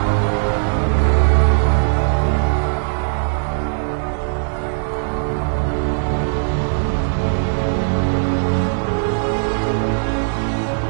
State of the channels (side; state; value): left; silent; digital silence